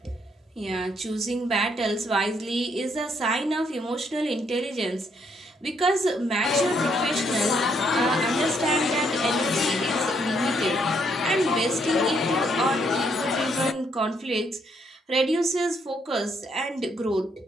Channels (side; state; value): both; normal; correlation 0.72